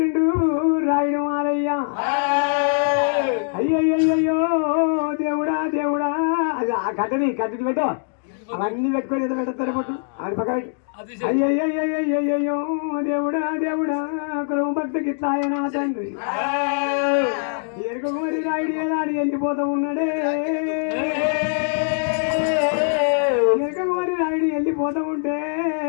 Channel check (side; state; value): right; silent; digital silence